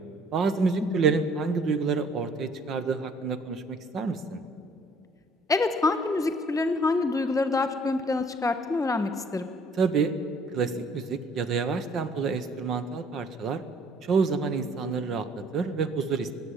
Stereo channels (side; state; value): both; normal; correlation 0.58